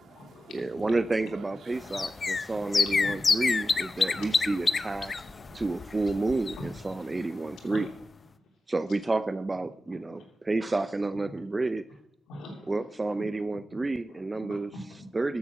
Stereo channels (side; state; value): both; normal; correlation 0.92